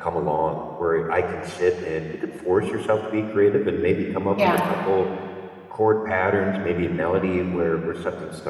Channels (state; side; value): identical; both; correlation 1.00